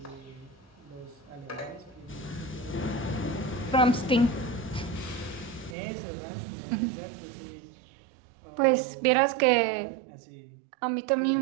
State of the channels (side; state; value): left; drops out; at 5.8 s